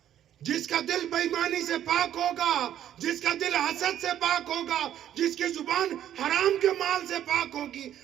جس کا دل بے ایمانی سے پاک ہوگا, جس کا دل حسد سے پاک ہوگا, جس کی زبان حرام کے مال سے پاک ہوگی.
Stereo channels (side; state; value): left; quieter; 11.0 dB